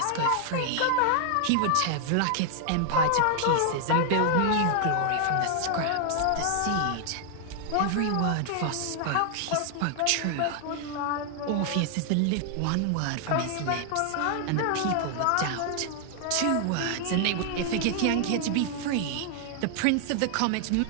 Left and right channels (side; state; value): both; different; correlation 0.00